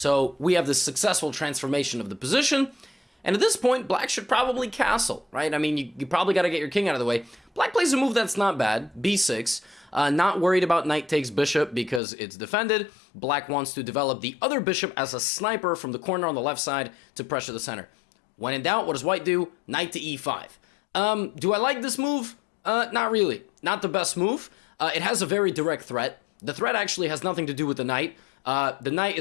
we have this successful transformation of the position, and at this point, black should probably castle, right? I mean, you probably got to get your king out of the way. Black plays a move that's not bad, b6. Not worried about knight takes bishop because it's defended. Black wants to develop the other bishop as a sniper from the corner on the left side to pressure the center. When in doubt, what does white do? Knight to e5. Do I like this move? Not really. Not the best move. It has a very direct threat. The threat actually has nothing to do with the knight. The knight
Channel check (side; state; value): right; drops out; at 12.0 s